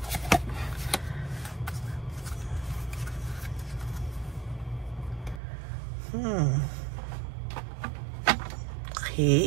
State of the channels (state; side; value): drops out; left; at 5.4 s